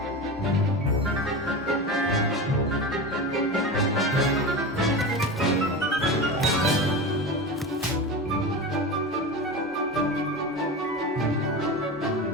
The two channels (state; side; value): normal; both; correlation 0.25